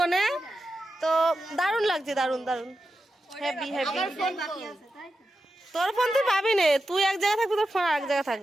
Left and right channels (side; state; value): both; normal; correlation 0.90